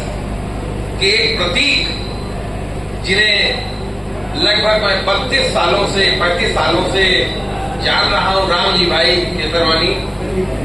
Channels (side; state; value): both; identical; correlation 1.00